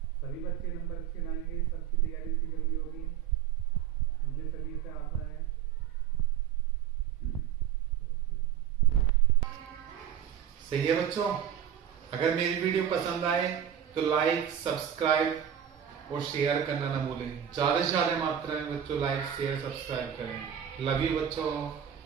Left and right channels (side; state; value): left; quieter; 9.4 dB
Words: सभी बच्चे नंबर अच्छे लाएंगे, सबकी तैयारी अच्छी जल्दी होगी, मुझे सभी से आशा है। सही है बच्चों, अगर मेरी वीडियो पसंद आए तो लाइक, सब्सक्राइब और शेयर करना ना भूलें। ज्यादा से ज्यादा मात्रा में बच्चों लाइक, शेयर, सब्सक्राइब करें। लव यू बच्चों,